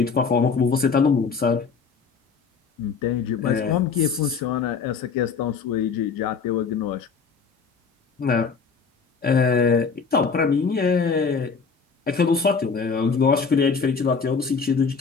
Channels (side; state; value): right; quieter; 5.4 dB